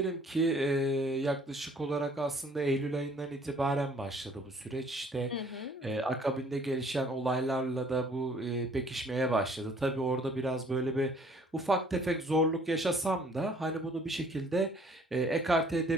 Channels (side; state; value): both; normal; correlation 0.57